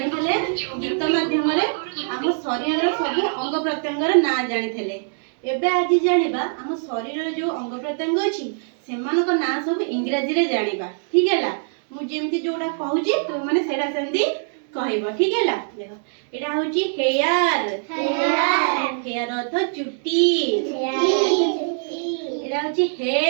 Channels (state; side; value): silent; left; 64 dB below the other